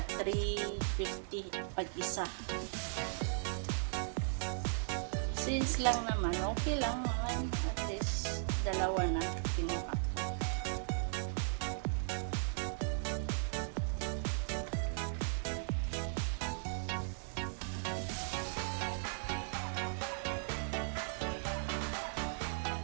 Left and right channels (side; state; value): left; silent; digital silence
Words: $3.50 pag isa. Since lang naman, okay lang. Dalawa na kinuha.